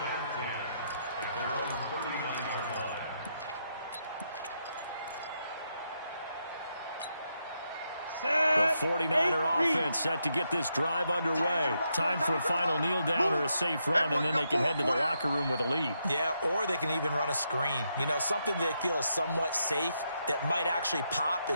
10 at their own 39-yard line. The 49er offense set to get this drive underway. Time for a final kneel down or a safe run, and then they can head to the locker room with a lead. Yeah, or they can even run a screen. You know, something they feel is somewhat safe that might actually pop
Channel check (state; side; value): inverted; both; correlation -0.81